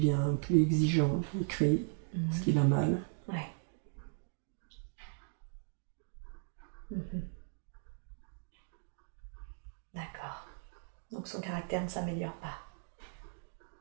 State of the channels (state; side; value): silent; left; digital silence